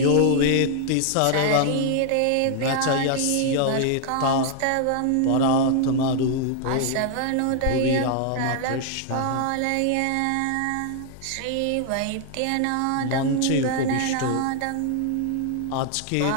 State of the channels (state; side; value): different; both; correlation 0.00